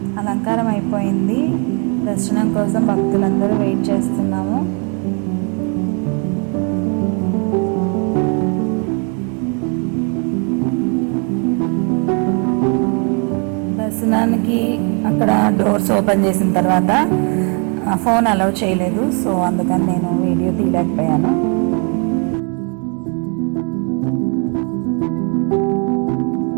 అలంకారం అయిపోయింది. దర్శనం కోసం భక్తులందరూ వెయిట్ చేస్తున్నాము. దర్శనానికి అక్కడ డోర్స్ ఓపెన్ చేసిన తర్వాత ఫోన్ అలౌ చేయలేదు. సో అందుకని నేను వీడియో తీయలేకపోయాను.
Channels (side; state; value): left; quieter; 37.1 dB